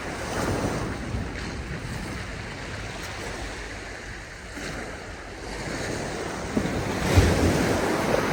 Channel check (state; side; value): identical; both; correlation 1.00